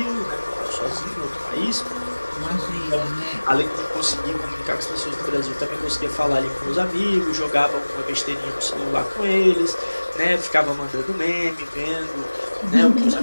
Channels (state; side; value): inverted; both; correlation -1.00